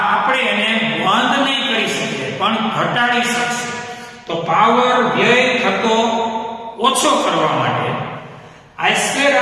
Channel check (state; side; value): identical; both; correlation 1.00